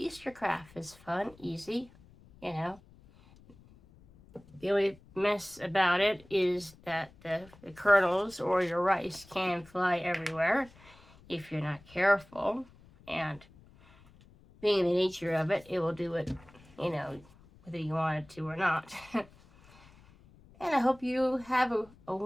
craft. It's fun, easy, The only mess about it is that the kernels or your rice can fly everywhere if you're not careful. And being the nature of it, it will do it, whether you want it to or not. And I hope you have a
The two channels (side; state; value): left; noise; rumble, 25 dB below the sound